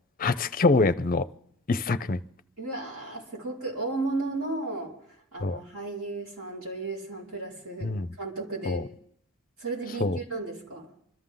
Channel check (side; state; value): both; normal; correlation 0.37